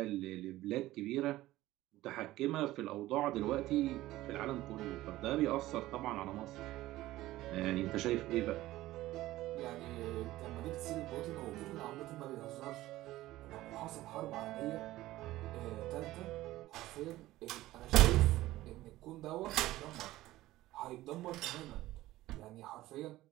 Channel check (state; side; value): quieter; left; 16.4 dB